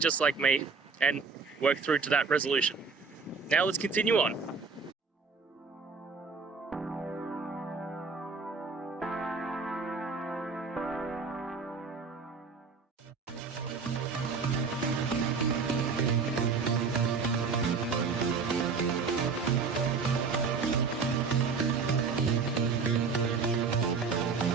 like me and work through to that resolution. Now let's continue on.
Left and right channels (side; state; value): left; quieter; 5.0 dB